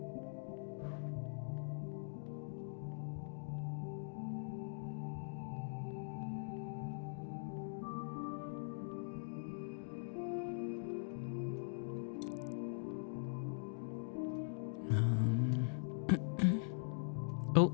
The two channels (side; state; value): right; silent; digital silence